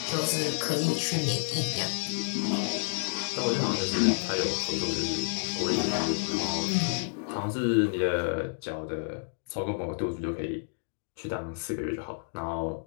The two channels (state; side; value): silent; right; digital silence